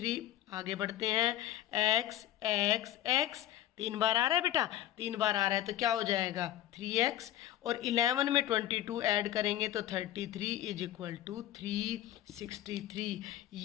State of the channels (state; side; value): quieter; right; 12.9 dB